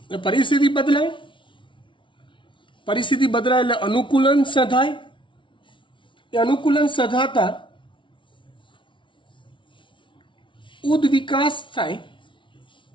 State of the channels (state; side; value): late; right; 0.24 ms